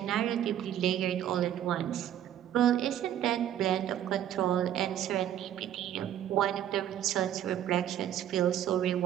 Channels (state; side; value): quieter; left; 11.0 dB